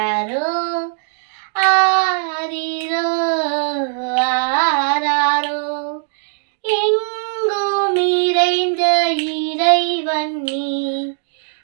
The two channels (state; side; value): silent; left; digital silence